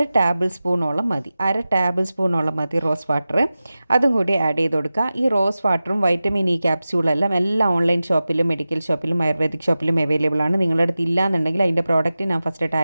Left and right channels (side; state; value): both; inverted; correlation -0.95